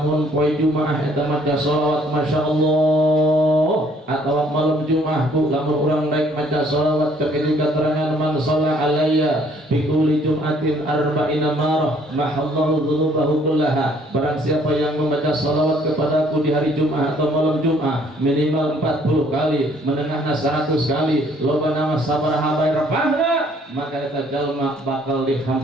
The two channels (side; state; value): both; normal; correlation 0.62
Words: poe Jumaah eta maca shalawat Masya Allah, atau malam Jumaah bu lamun urang naik maca shalawat kekitu keterangan man shalla alayya bi kulli jum'atin arba'ina marah mahallahu dzunubahu kullaha. Barang siapa yang membaca shalawat kepadaku di hari Jumaah atau malam Jumaah minimal 40 kali, menengahna 100 kali, loba nama sabaraha bae repahna, maka eta jalma bakal